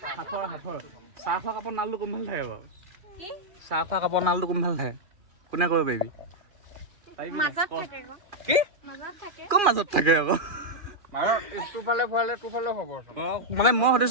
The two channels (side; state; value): left; late; 2.4 ms